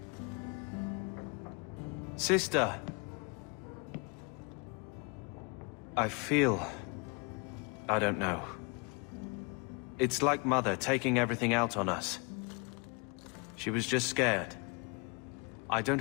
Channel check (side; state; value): right; quieter; 32.3 dB